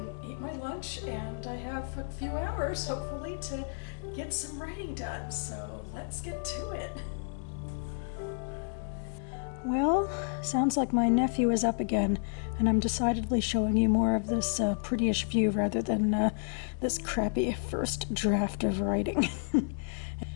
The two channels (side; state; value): right; silent; digital silence